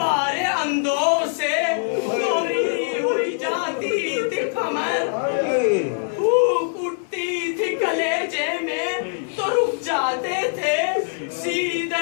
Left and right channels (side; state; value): right; silent; 58 dB below the other